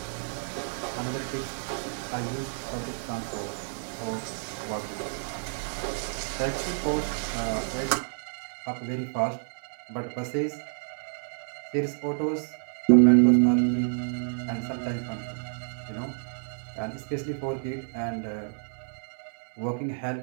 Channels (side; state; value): left; silent; digital silence